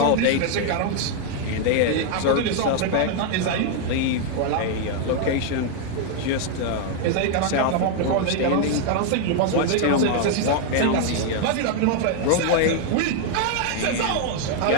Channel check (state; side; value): different; both; correlation 0.00